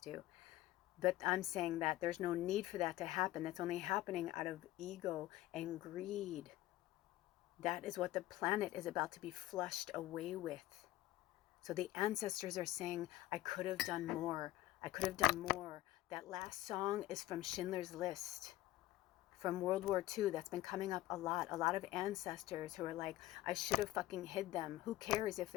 But I'm saying that there's no need for that to happen. That's only happening out of ego and greed. That is what the planet is about to be flushed away with. So the ancestors are saying, I could have done more. I could have done more. That last song is from Schindler's List, from World War II. That's been coming up a lot. A lot of ancestors who are like, I should have fucking hid them. Who cares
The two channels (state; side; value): quieter; right; 16.0 dB